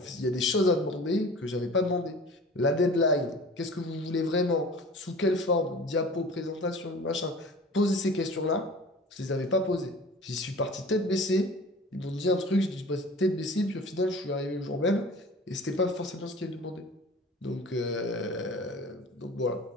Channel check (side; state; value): both; normal; correlation 0.42